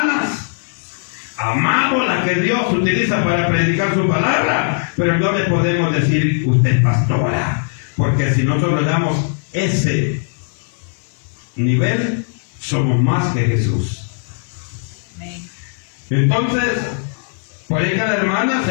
amamos las que Dios utiliza para predicar su palabra, pero no le podemos decir usted es pastora, porque si nosotros le damos ese nivel, somos más que Jesús. Amén. Entonces, por ahí cada hermana,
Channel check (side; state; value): right; silent; 67 dB below the other